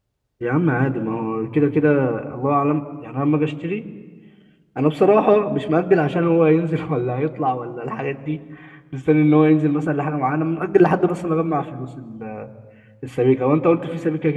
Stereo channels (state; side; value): identical; both; correlation 1.00